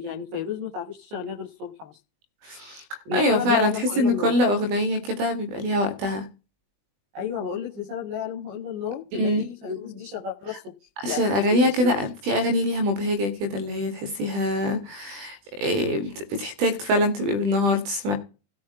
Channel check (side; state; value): left; late; 20 ms